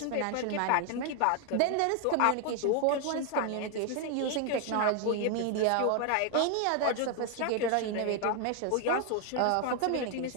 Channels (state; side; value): different; both; correlation 0.01